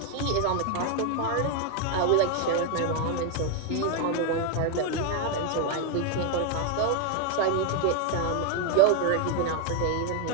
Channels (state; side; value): different; both; correlation 0.01